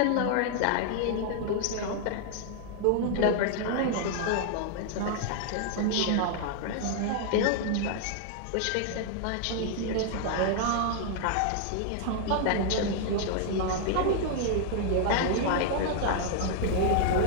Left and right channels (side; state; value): both; different; correlation 0.00